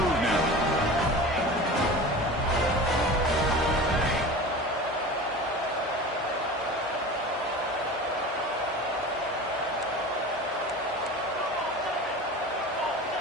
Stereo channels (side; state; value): both; normal; correlation 0.34